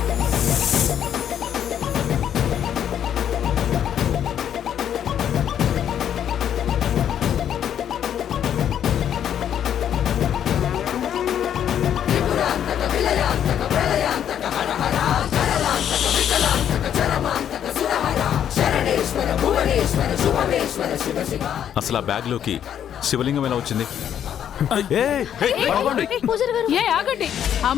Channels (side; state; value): right; quieter; 9.6 dB